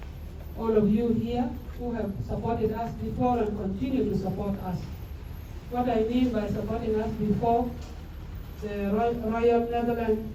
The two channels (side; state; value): both; identical; correlation 1.00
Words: all of you here who have supported us before and continue to support us. What I mean by supporting us before, the Royal Netherlands